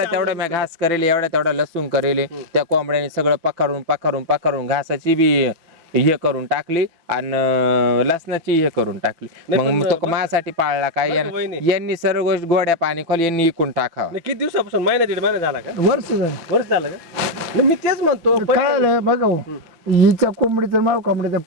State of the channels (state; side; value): late; left; 6.0 ms